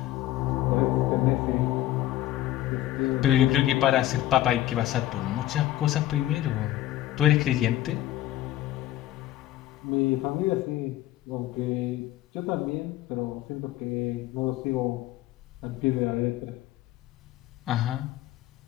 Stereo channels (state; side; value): quieter; right; 14.4 dB